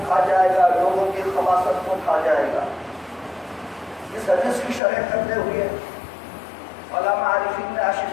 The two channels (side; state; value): right; drops out; at 4.8 s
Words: کھا جائے گا، لوگوں کی خباثت کو کھا جائے گا۔ اس حدیث کی شرح کرتے ہوئے علامہ عارفین نے